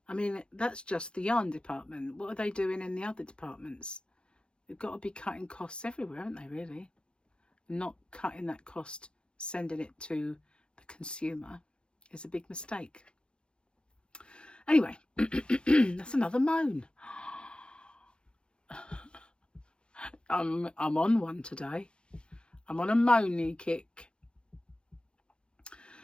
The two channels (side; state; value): right; late; 0.054 ms